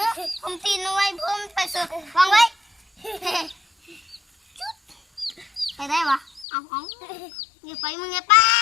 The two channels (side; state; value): right; drops out; at 6.5 s